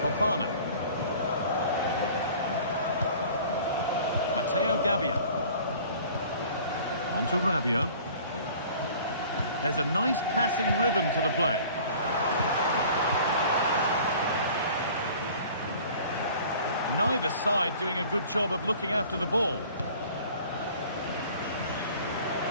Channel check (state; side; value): inverted; both; correlation -0.48